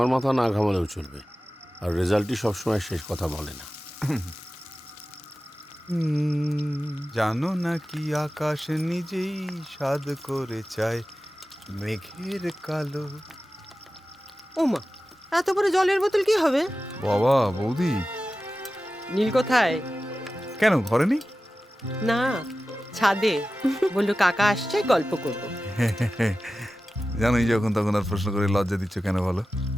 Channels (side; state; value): both; normal; correlation 0.95